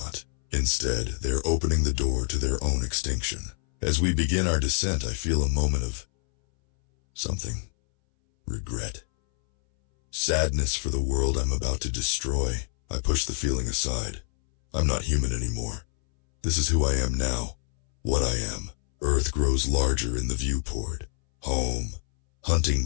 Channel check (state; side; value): silent; right; 61 dB below the other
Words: Instead, they're opening the door to their own extinction. As we begin our descent, I feel a moment of something. Regret. Sadness for the world I'm about to destroy. I push the feeling aside. I'm not human anymore. This is who I am now. What I am. Earth grows larger in the viewport. Home. Hunting